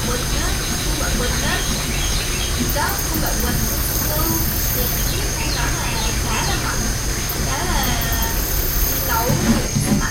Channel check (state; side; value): identical; both; correlation 1.00